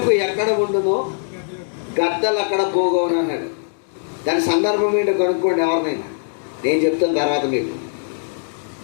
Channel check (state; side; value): silent; right; 65 dB below the other